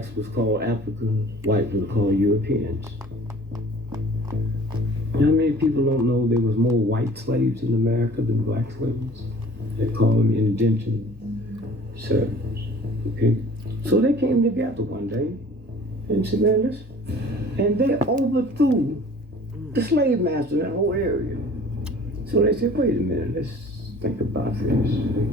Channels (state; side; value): normal; both; correlation 0.48